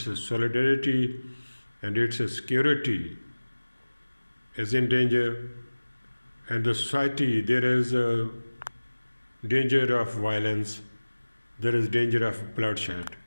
solidarity, and its security is in danger. And the society, there is a danger of violence, there is danger of bloodshed,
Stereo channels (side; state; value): both; inverted; correlation -1.00